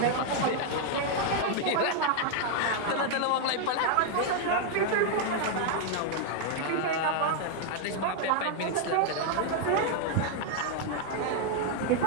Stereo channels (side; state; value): both; different; correlation 0.00